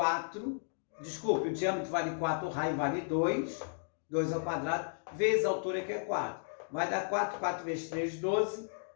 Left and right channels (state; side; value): silent; right; digital silence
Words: Desculpe, o diâmetro vale 4, o raio vale 2, 2 ao quadrado, vezes a altura que é 4. Vai dar 4, 4 vezes 3, 12,